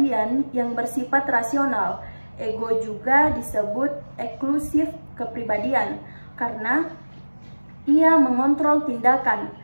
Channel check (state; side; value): inverted; both; correlation -1.00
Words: yang bersifat rasional. Ego juga disebut eksklusif kepribadian karena ia mengontrol tindakan,